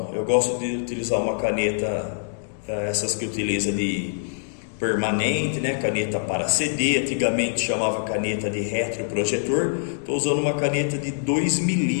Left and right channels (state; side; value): silent; right; digital silence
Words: Eu gosto de utilizar uma caneta, essas que utiliza de permanente, né? Caneta para CD, antigamente chamava caneta de retroprojetor. Estou usando uma caneta de 2